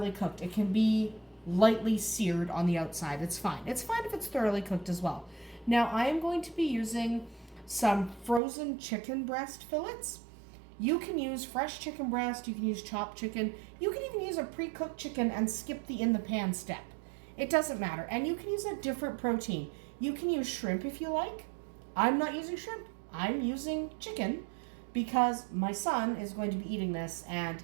cooked. It can be lightly seared on the outside. It's fine. It's fine if it's thoroughly cooked as well. Now I am going to be using some frozen chicken breast fillets. You can use fresh chicken breast, you can use chopped chicken, you can even use a pre-cooked chicken and skip the in the pan step. It doesn't matter. And you can use a different protein. You can use shrimp if you like. I'm not using shrimp. I'm using chicken because my son is going to be eating this and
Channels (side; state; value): left; drops out; at 8.4 s